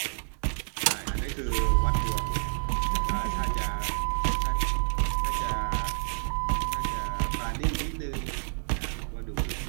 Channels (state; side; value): silent; left; digital silence